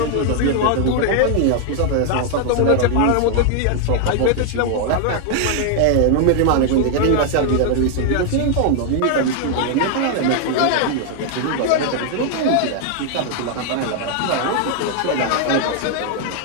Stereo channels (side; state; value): both; different; correlation 0.00